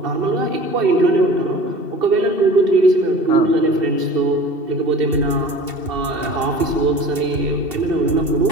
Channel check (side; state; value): left; late; 2.7 ms